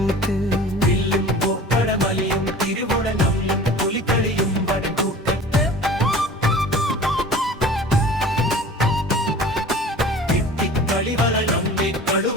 വില്ലും പൂപ്പടമലിയും തിരുവുടലും പുലിക്കളിയും വടക്കൂട്ടത്ത് കളിവളി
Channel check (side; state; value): both; normal; correlation 0.42